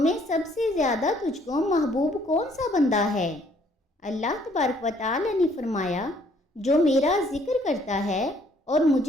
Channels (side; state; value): both; normal; correlation 0.63